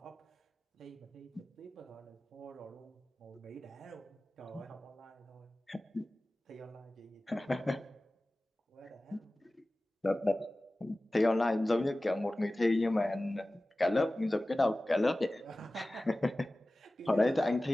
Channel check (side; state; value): both; normal; correlation 0.97